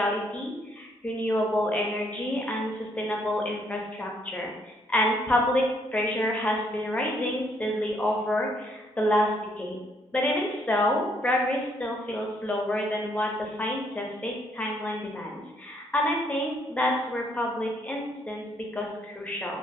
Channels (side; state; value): both; normal; correlation 0.70